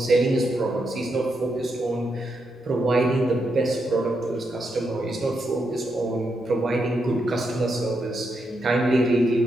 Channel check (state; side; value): normal; both; correlation 0.82